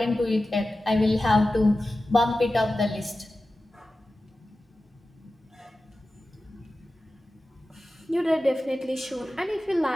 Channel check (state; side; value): normal; both; correlation 0.94